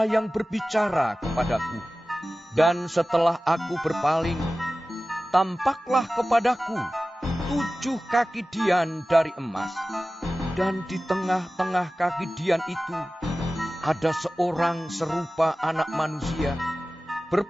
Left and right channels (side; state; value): both; normal; correlation 0.96